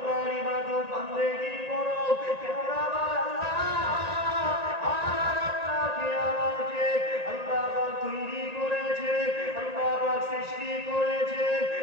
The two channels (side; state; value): left; late; 1.9 ms